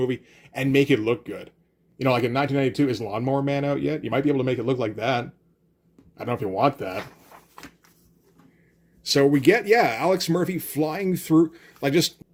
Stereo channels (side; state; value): both; identical; correlation 1.00